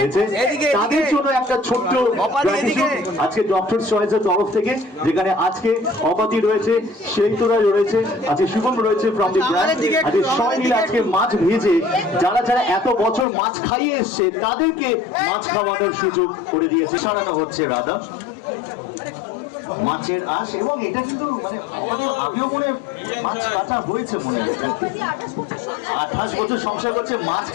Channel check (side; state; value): right; drops out; at 13.2 s